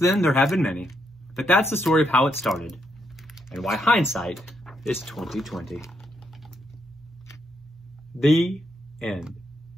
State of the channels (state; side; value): normal; both; correlation 0.78